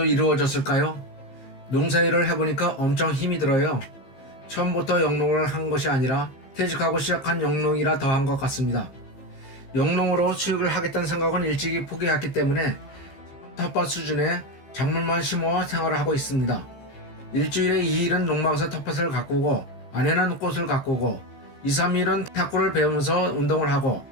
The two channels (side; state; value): right; late; 15 ms